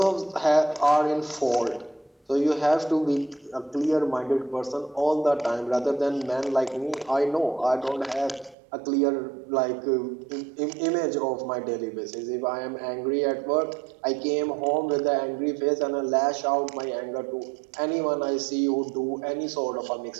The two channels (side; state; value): left; drops out; at 8.6 s